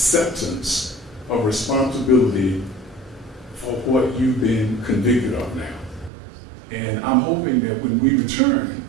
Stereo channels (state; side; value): drops out; left; at 6.1 s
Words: of responsibility for what you've been convicted of now. And I'm hoping that when we return,